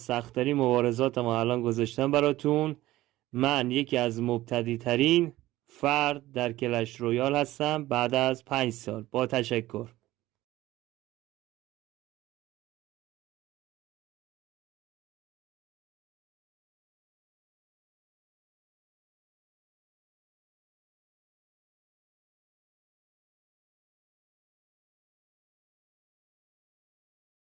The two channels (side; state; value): left; quieter; 16.5 dB